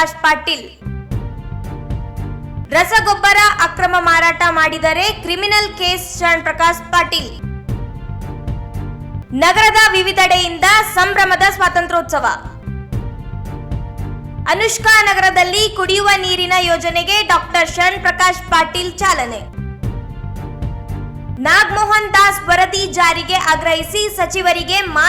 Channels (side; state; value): both; identical; correlation 1.00